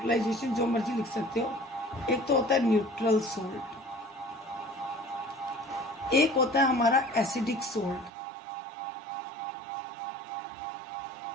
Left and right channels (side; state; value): left; drops out; at 8.1 s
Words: जो मर्जी लिख सकते हो। एक तो होता है न्यूट्रल सोल्ट, एक होता है हमारा एसिडिक सोल्ट,